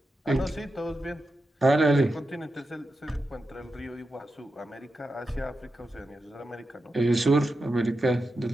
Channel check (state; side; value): normal; both; correlation 0.89